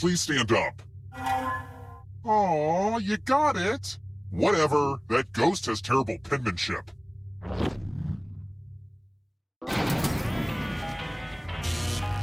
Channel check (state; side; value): identical; both; correlation 1.00